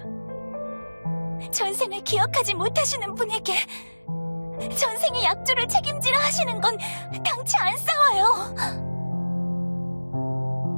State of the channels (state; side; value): inverted; both; correlation -1.00